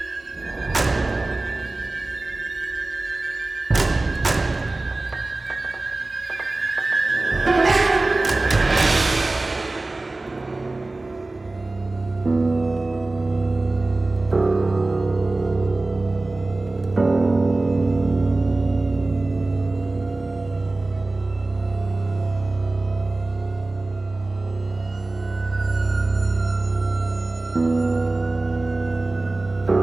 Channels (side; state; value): left; quieter; 3.1 dB